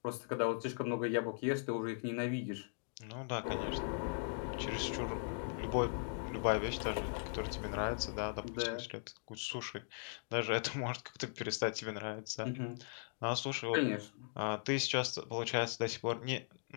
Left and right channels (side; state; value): right; silent; digital silence